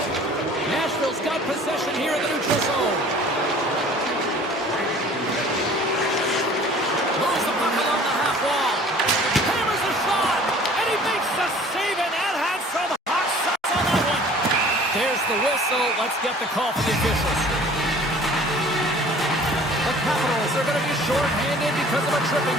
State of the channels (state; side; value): normal; both; correlation 0.49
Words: Nashville's got possession here in the neutral zone. Moves the puck along the half wall. Hammers a shot, and he makes the save, and that had some hot shots on that one. There's the whistle. Let's get the call from the officials. because of a